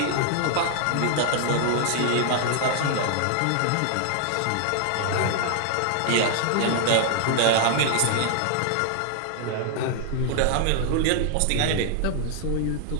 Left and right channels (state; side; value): different; both; correlation 0.00